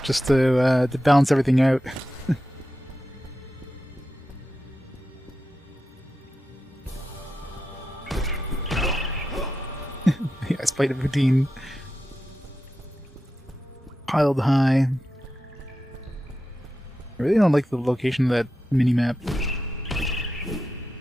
just to balance everything out. Yeah, I spite a routine. Piled high. I really don't like the location of that mini-map.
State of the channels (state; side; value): normal; both; correlation 0.90